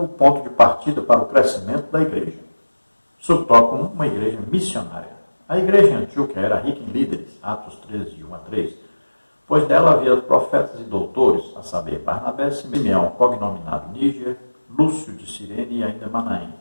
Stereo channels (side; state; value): both; inverted; correlation -1.00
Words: o ponto de partida para o crescimento da igreja. Subtópico 1, uma igreja missionária. A igreja em Antioquia era rica em líderes, Atos 13, de 1 a 3, pois dela havia profetas e doutores, a saber, Barnabé, Simeão, cognominado Níger, Lúcio de Cirene e ainda Manaém,